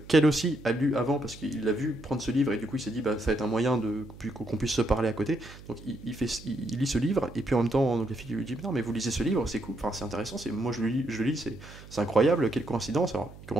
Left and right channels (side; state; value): right; noise; hum, 18 dB below the sound